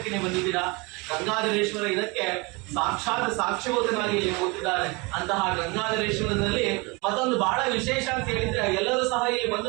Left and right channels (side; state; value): left; quieter; 27.3 dB